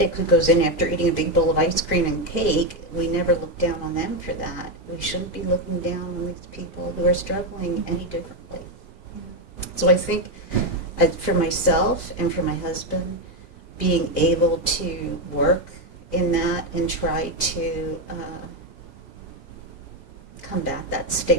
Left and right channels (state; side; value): late; right; 2.0 ms